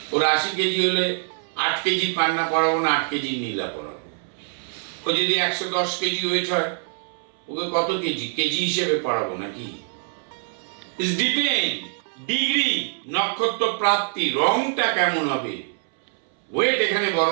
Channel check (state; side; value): silent; left; 63 dB below the other